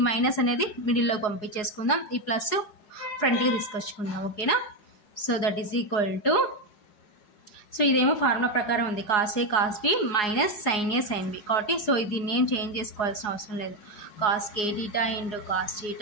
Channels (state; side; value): late; right; 4.8 ms